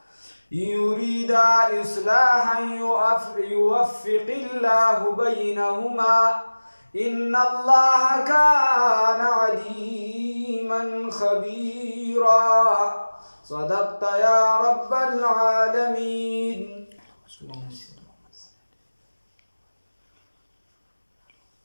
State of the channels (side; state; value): both; inverted; correlation -1.00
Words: يريدا إصلاحا يوفق الله بينهما إن الله كان عليما خبيرا. صدقت يا رب العالمين.